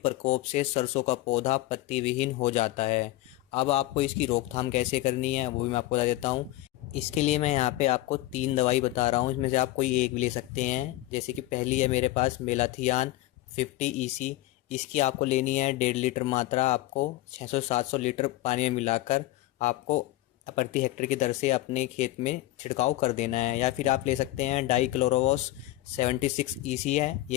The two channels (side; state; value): right; quieter; 16.7 dB